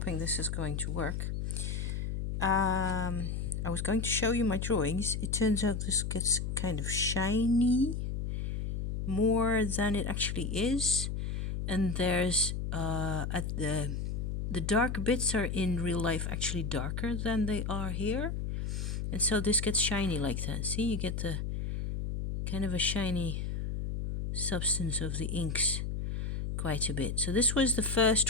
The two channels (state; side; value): noise; left; hum, 3 dB below the sound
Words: this is going to work. I was going to show you my drawings. It turns out this gets kind of shiny more than it actually is, and there's at the dark bits are in real life actually darker than they are here, and so this gets shiny like that. See, you get the kind of a shiny substance of the inks quite a bit. So this was the